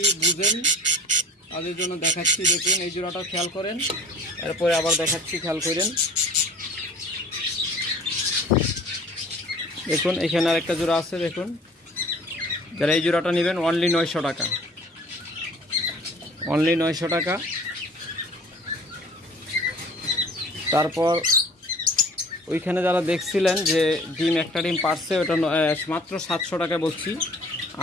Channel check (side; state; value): both; normal; correlation 0.47